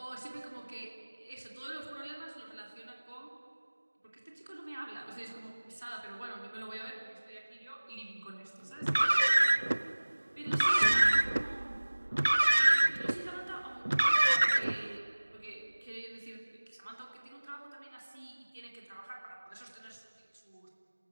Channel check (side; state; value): both; inverted; correlation -1.00